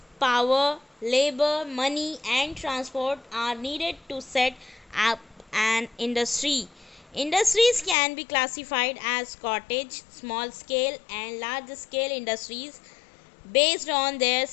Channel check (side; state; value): right; drops out; at 8.0 s